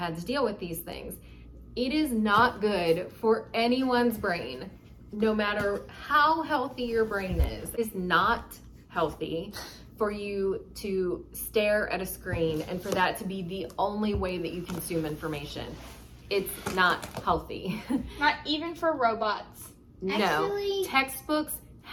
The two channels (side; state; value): both; identical; correlation 1.00